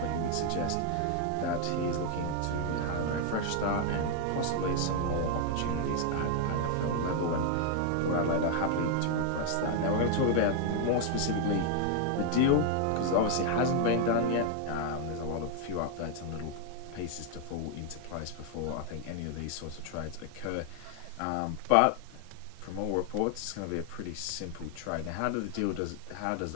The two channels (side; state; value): both; different; correlation 0.00